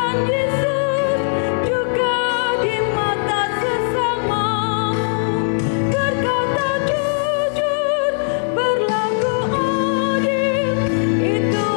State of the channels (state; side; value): silent; right; digital silence